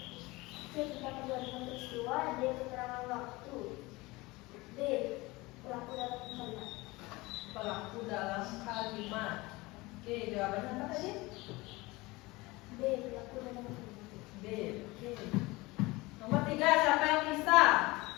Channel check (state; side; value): quieter; right; 22.1 dB